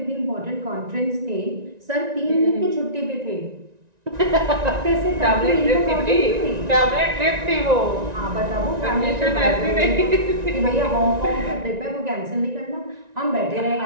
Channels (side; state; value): left; late; 1.9 ms